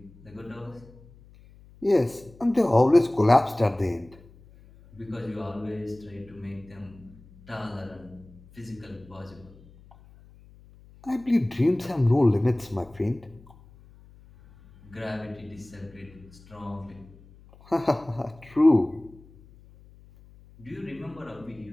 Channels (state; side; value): noise; left; hum, 24 dB below the sound